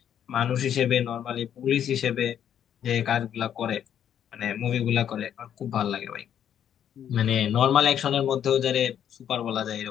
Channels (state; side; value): quieter; right; 9.6 dB